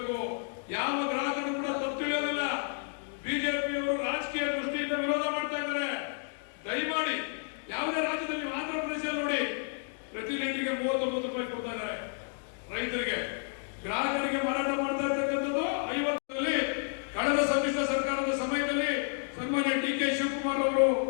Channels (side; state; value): right; silent; 57 dB below the other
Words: ಯಾವ ಗ್ರಾಹಕರು ಕೂಡ ತಪ್ಪು ತಿಳಿಯೋದಿಲ್ಲ. ಬಿಜೆಪಿಯವರು ರಾಜಕೀಯ ದೃಷ್ಟಿಯಿಂದ ವಿರೋಧ ಮಾಡ್ತಾ ಇದ್ದಾರೆ. ದಯಮಾಡಿ ಯಾವುದೇ ರಾಜ್ಯದಲ್ಲಿ, ಆಂಧ್ರ ಪ್ರದೇಶದಲ್ಲಿ ನೋಡಿ, ಪ್ರತಿ ಲೀಟರ್ಗೆ 39 ರೂಪಾಯಿ ಕೊಡ್ತಾ ಇದ್ದಾರೆ ರೈತರಿಗೆ. ಗ್ರಾಹಕರಿಗೆ ಮಾರಾಟ ಮಾಡ್ತಾ ಇರ್ತಕ್ಕಂಥದ್ದು 50ರಲ್ಲಿ. ಕಳೆದ ಸಮ್ಮಿಶ್ರ ಸರ್ಕಾರದ ಸಮಯದಲ್ಲಿ ಸನ್ಮಾನ್ಯ ಡಿ ಕೆ ಶಿವಕುಮಾರ್ ಅವರು